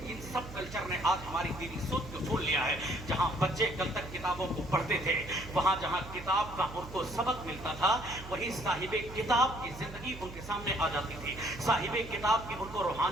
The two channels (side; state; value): right; noise; hum, 13 dB below the sound